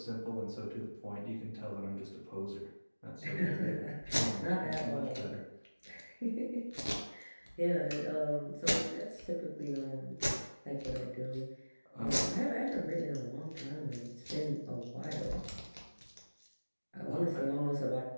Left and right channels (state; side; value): inverted; both; correlation -1.00